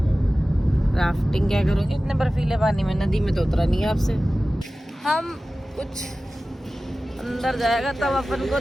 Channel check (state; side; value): normal; both; correlation 0.96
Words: राफ्टिंग क्या करोगे इतने बर्फीले पानी में? नदी में तो उतरा नहीं है आपसे। हम कुछ अंदर जाएगा तब अपन को